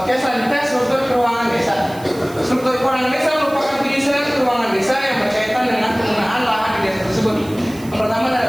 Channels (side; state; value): right; noise; hiss, 20 dB below the sound